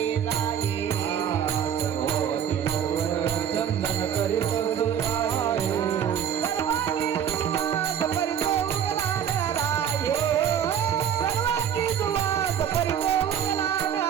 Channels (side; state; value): left; quieter; 8.9 dB